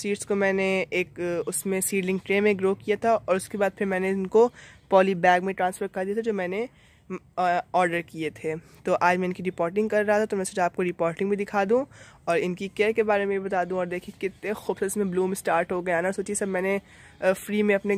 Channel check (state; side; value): identical; both; correlation 1.00